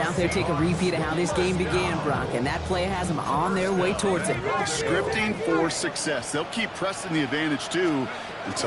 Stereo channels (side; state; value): both; identical; correlation 1.00